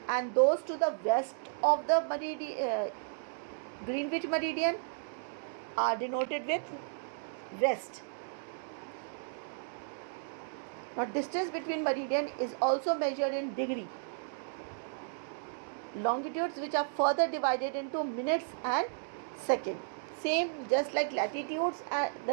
and those to the west of the Greenwich meridian are denoted with west. Now, distance between meridian is also measured in degree. Longitudes which are further divided into minutes and seconds. Same, just like latitudes,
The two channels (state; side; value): silent; left; digital silence